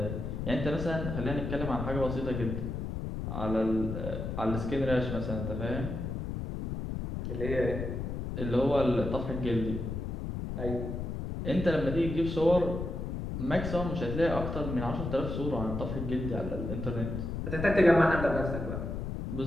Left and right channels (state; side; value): noise; left; rumble, 4 dB below the sound